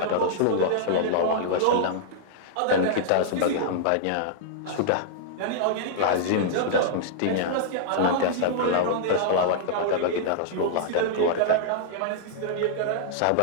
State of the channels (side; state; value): both; different; correlation -0.02